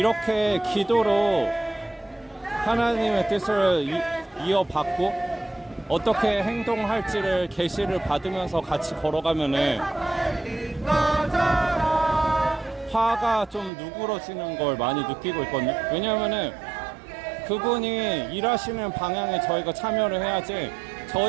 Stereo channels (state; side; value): drops out; left; at 13.7 s